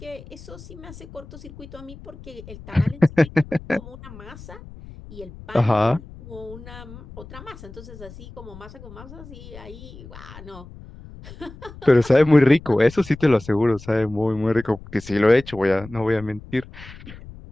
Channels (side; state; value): left; noise; rumble, 17 dB below the sound